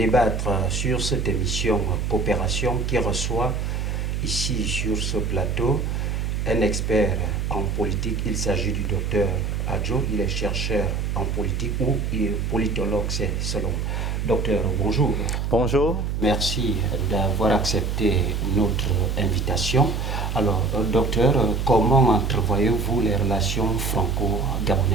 sur cette émission Coopération qui reçoit ici sur ce plateau un expert en politique. Il s'agit du docteur Adjo, il est chercheur en politique ou il est politologue, c'est selon. Docteur, bonjour. Bonjour. Merci d'avoir accepté notre invitation. Alors, docteur, comment entrevoyez-vous les relations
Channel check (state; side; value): noise; right; hum, 1 dB below the sound